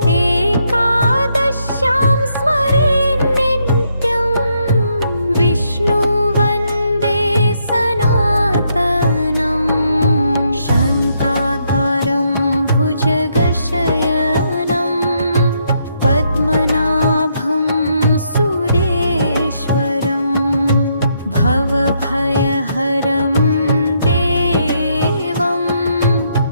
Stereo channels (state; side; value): inverted; both; correlation -0.75